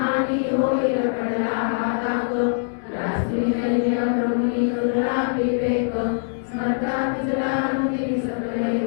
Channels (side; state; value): right; silent; digital silence